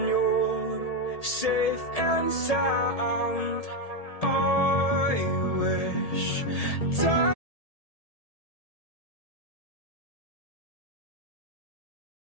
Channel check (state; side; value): late; right; 1.7 ms